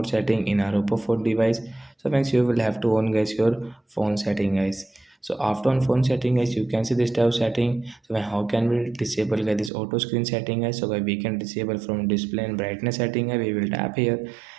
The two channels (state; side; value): drops out; left; at 9.7 s